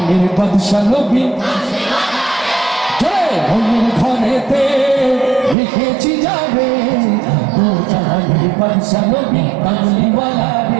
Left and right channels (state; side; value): drops out; left; at 5.6 s